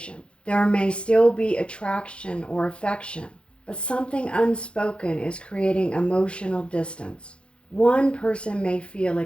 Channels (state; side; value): late; right; 0.058 ms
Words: There may still be attraction or affection, but something unspoken is creating emotional distance. One person may feel